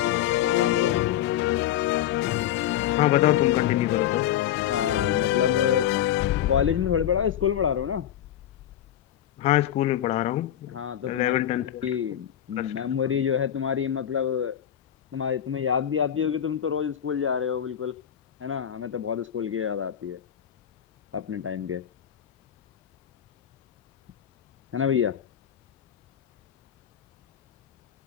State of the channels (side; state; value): right; quieter; 10.8 dB